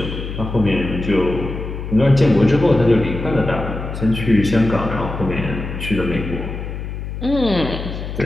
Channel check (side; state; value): left; noise; hum, 7 dB below the sound